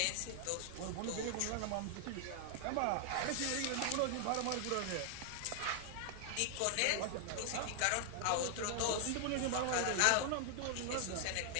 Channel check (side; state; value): both; different; correlation 0.00